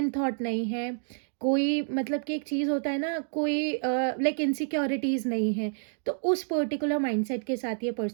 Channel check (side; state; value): left; silent; digital silence